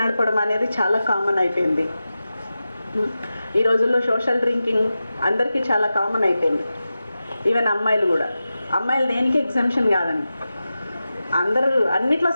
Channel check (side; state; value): both; inverted; correlation -0.93